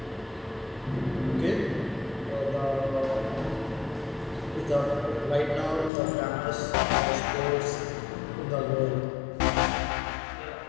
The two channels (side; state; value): right; drops out; at 5.9 s